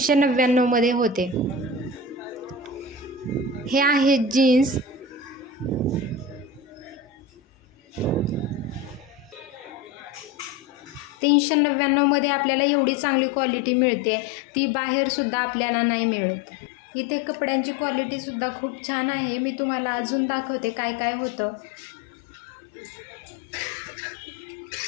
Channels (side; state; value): right; drops out; at 11.1 s